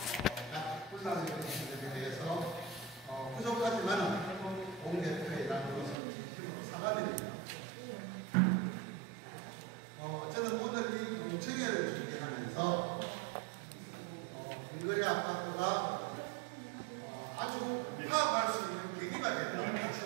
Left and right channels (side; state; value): left; drops out; at 6.0 s